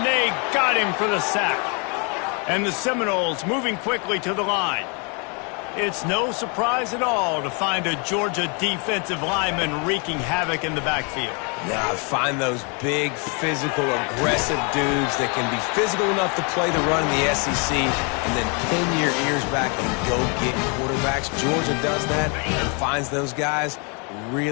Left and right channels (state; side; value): quieter; right; 34.6 dB